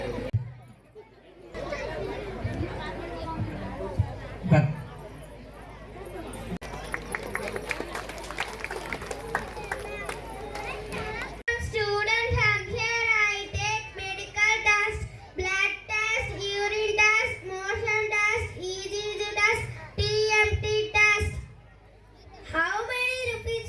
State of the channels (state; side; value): identical; both; correlation 1.00